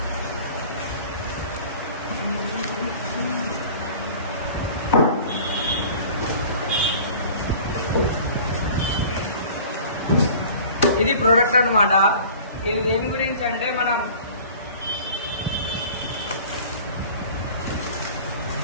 ఇది ప్రోడక్ట్ అన్నమాట. ఇది దేని గురించి అంటే మనం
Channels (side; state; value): both; inverted; correlation -0.44